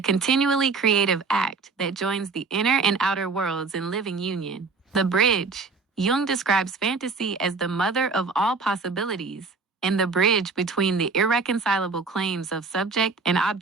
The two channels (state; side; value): quieter; left; 4.4 dB